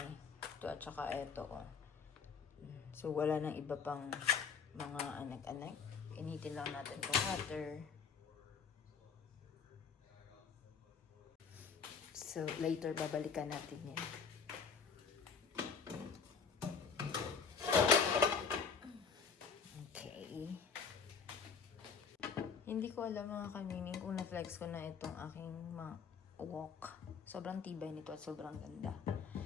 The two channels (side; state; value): right; quieter; 6.0 dB